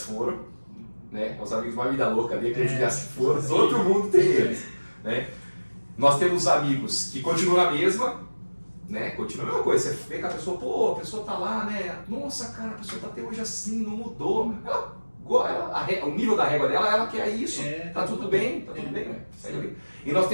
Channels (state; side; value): inverted; both; correlation -1.00